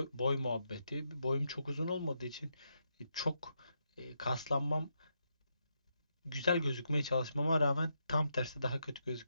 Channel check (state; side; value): inverted; both; correlation -0.81